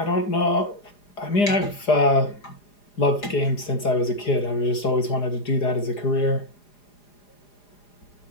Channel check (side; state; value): right; late; 4.9 ms